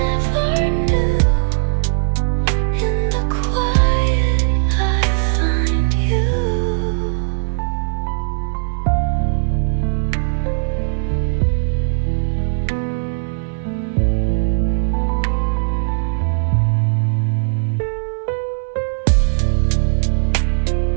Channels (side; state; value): left; silent; digital silence